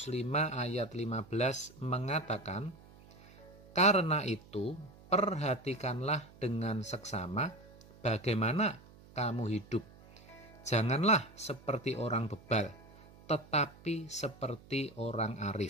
5 ayat 15 mengatakan, "Karena itu, perhatikanlah dengan seksama bagaimana kamu hidup. Janganlah seperti orang bebal, tetapi seperti orang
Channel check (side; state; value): right; noise; hum, 23 dB below the sound